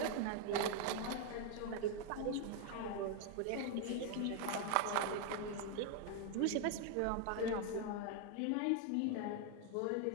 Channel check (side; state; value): both; different; correlation 0.00